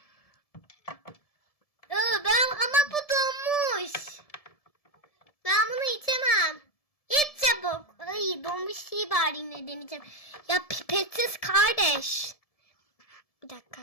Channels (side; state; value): right; late; 1.7 ms